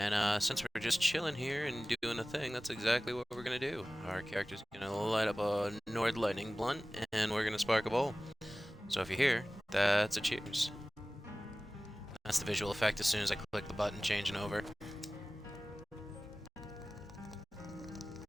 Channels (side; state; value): both; normal; correlation 0.98